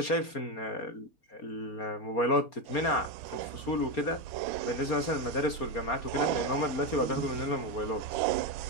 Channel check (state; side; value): late; right; 4.3 ms